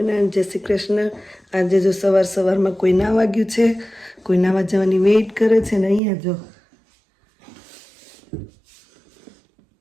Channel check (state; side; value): drops out; left; at 6.0 s